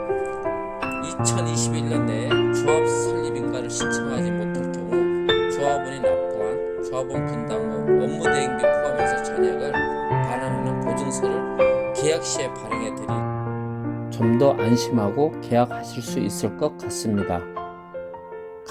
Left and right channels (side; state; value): both; identical; correlation 1.00